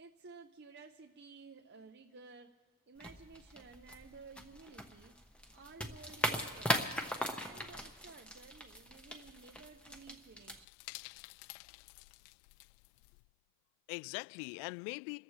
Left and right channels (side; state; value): right; drops out; at 10.7 s